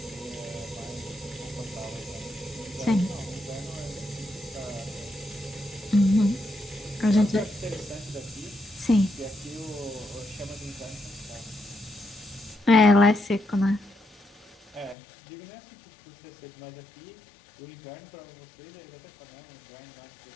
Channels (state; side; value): drops out; right; at 15.0 s